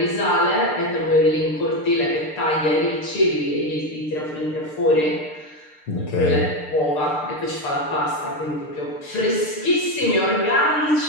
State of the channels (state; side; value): late; right; 6.6 ms